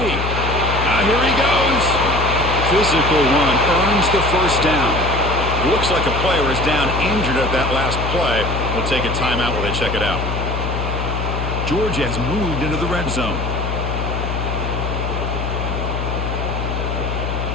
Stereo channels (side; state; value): left; noise; hum, 3 dB below the sound